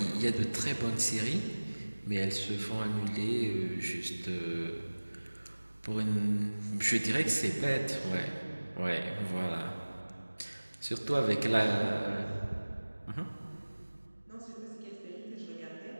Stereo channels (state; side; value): inverted; both; correlation -1.00